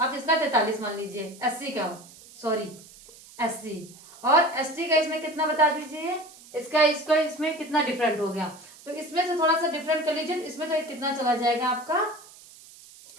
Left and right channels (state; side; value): noise; right; hiss, 21 dB below the sound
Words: इसका 43 मान लीजिए। एससी का, सॉरी एससी और एसटी का इसमें कितना बता दीजिए, इसका इसमें कितना डिफरेंट हो गया, तो इसमें से थोड़ा सा डिफरेंट कर लीजिए। इसमें तो कितना चला जाएगा आपका